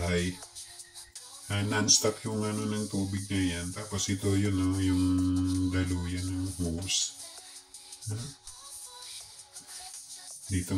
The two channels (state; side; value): identical; both; correlation 1.00